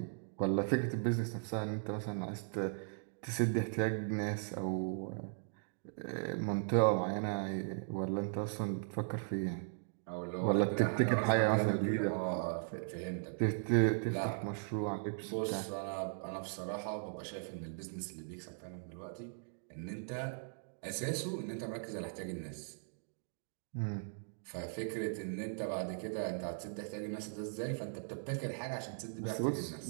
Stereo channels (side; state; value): left; silent; digital silence